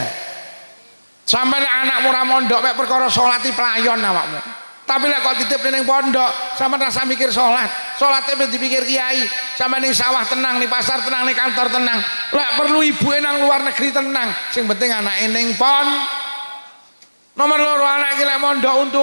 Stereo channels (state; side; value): inverted; both; correlation -1.00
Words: Sampai nek anakmu ora mondok mek perkara salati pelayon awakmu. Tapi lek kok titip ning pondok, sampean rasa mikir salat. Salate ben dipikir kiai. Sampai ning sawah tenang, ning pasar tenang, ning kantor tenang. Lek perlu ibuke nang luar negeri tenang. Sing penting anake ning pon. Nomor 2 anak iki lek mondok